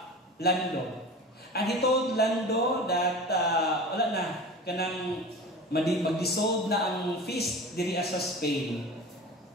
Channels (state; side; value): normal; both; correlation 0.34